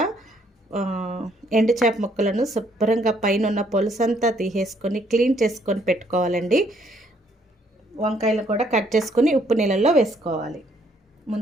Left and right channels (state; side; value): normal; both; correlation 0.68